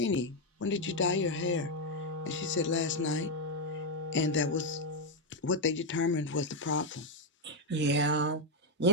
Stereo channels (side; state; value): both; normal; correlation 0.03